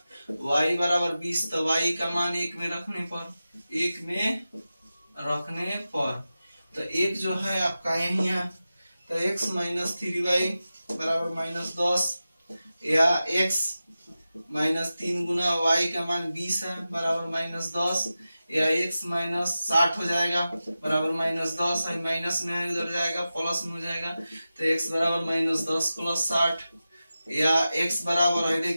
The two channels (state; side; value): inverted; both; correlation -0.94